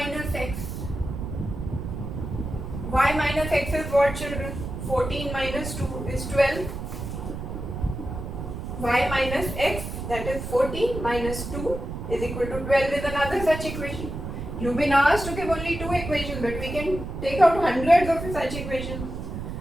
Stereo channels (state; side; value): noise; right; rumble, 7 dB below the sound